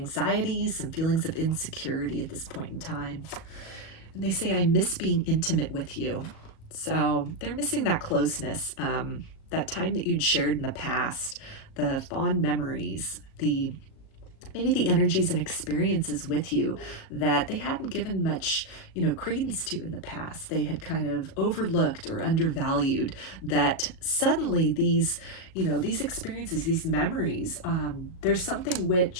some feelings of insecurity at this point in time. And they say, I miss being intimate with you. So they're missing that closeness, that time that you'd shared in the past, the fond memories, maybe the energies and experiences with you that they hadn't given much, credence to in the past. They had kind of overlooked or undervalued, that suddenly these experiences, these memories, there's something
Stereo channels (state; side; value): late; right; 37 ms